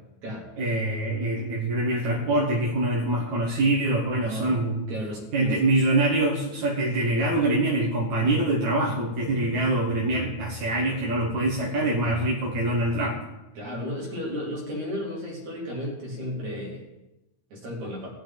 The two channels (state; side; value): late; left; 9.2 ms